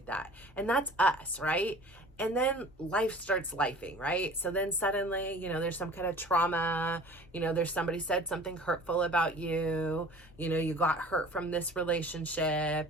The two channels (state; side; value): normal; both; correlation 0.45